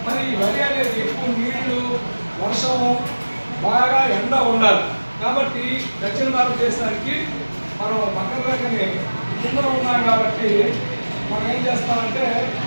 మరి ఈ వరి అనేది ఎక్కువ నీళ్లు, వర్షము, బాగా ఎండ ఉండాలి. కాబట్టి దక్షిణ భారతదేశానికి మనం పక్కన రకనే కింద ఉన్నాం కాబట్టి మనం ఏం చేస్తామంటే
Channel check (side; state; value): both; inverted; correlation -1.00